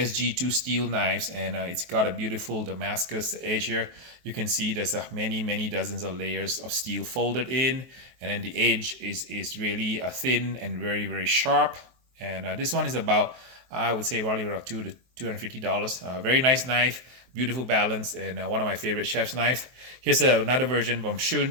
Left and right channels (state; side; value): late; left; 23 ms